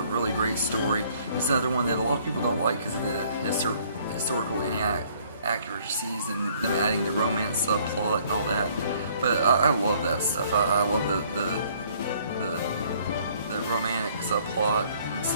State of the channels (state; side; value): inverted; both; correlation -0.60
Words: really great story. It's another one that a lot of people don't like because of the historical inaccuracies and them adding the romance subplot and all that, but I love that stuff. I love the romantic subplot and